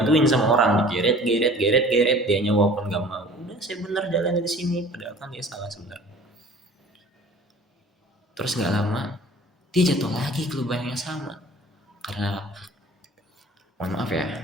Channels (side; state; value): both; normal; correlation 0.47